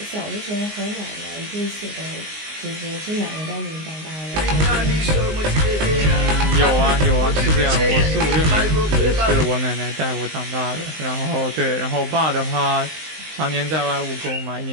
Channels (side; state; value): left; late; 19 ms